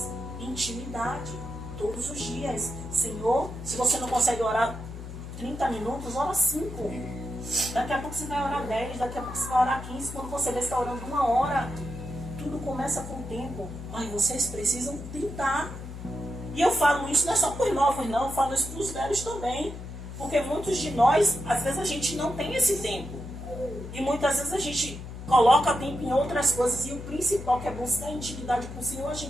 Intimidade. Todos os dias. Senhor, se você não consegue orar 30 minutos, ora 5. Daqui a pouco você vai orar 10. Daqui a pouco você vai orar 15. Quando você vê, você está orando 1 hora. Tudo começa com o tempo. Mas vocês precisam tentar. E eu falo isso não é só para os novos, não. Eu falo isso para os velhos também. Porque muitos de nós, às vezes a gente não tem esse tempo. E muitas vezes a gente coloca tempo em outras coisas. E o principal, que é buscar intimidade com o Senhor, a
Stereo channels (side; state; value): left; noise; hum, 10 dB below the sound